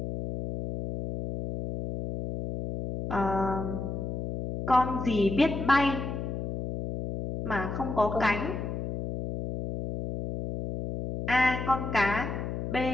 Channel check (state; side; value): noise; left; hum, 5 dB below the sound